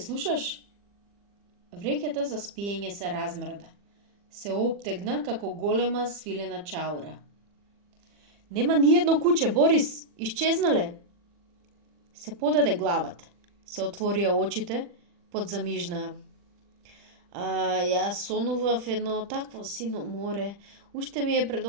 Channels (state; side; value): late; left; 40 ms